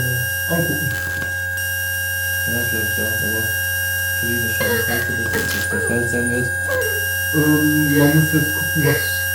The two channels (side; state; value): both; identical; correlation 1.00